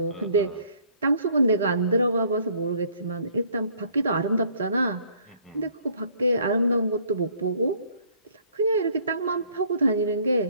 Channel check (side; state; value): both; inverted; correlation -0.60